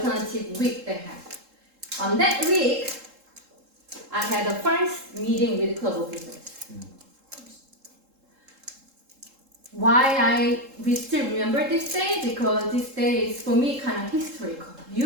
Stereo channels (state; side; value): late; left; 3.7 ms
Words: week they have. On that week, I had the first meeting with club officers. Why we still remember this day? Because this day is for me kind of historical.